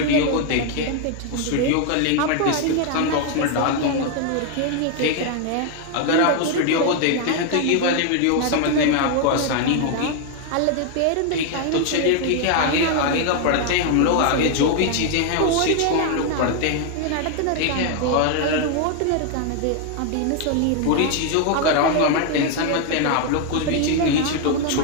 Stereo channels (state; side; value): different; both; correlation 0.00